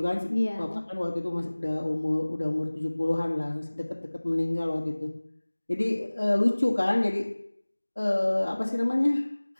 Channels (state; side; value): inverted; both; correlation -1.00